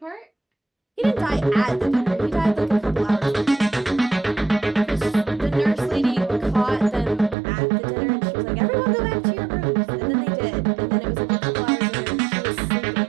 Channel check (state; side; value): drops out; left; at 7.4 s